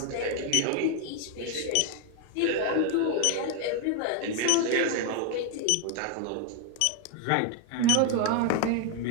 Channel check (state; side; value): different; both; correlation 0.01